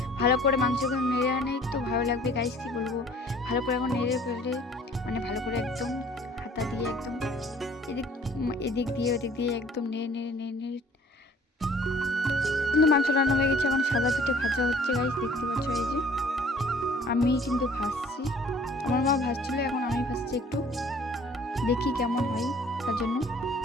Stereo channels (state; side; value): normal; both; correlation 0.53